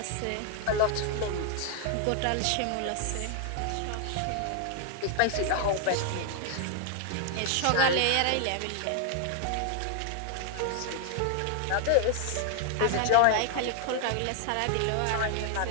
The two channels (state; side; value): different; both; correlation 0.00